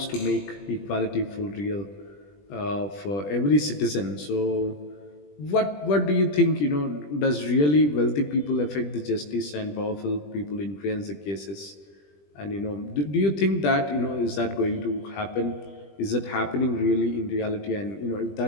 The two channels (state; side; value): late; right; 20 ms